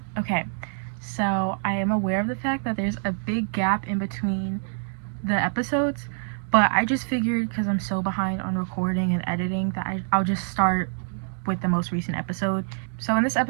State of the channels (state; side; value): silent; left; digital silence